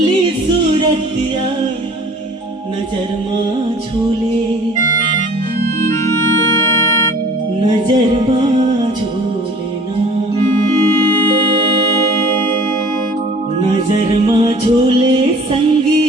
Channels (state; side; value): normal; both; correlation 0.48